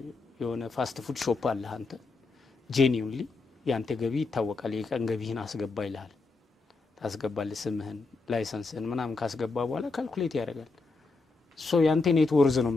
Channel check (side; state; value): right; quieter; 3.8 dB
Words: የሆነ ፋስት ፉድ ሾፕ አለ አንተ ጄኒዩንሊ ያንተ ገቢ ይታወቃል የቀን ገቢህን አስገባ ይልሃል። ታስገባለህ ስምህን ላይሰንስህን ምናምን ካስገባ በኋላ ካልኩሌት ያደርጋል። ሶ ያንተ ኔት ወርዝ ነው